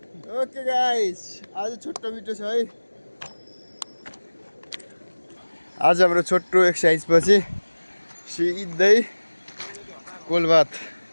ओके गाइस, आज छोटो भिडियो छ है। आज हाम्रो छोटो एक्सर्साइज पछि सिधै कोलबार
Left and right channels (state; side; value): inverted; both; correlation -1.00